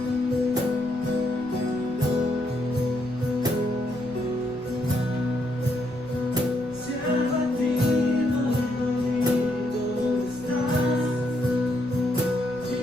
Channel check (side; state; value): left; noise; rumble, 22 dB below the sound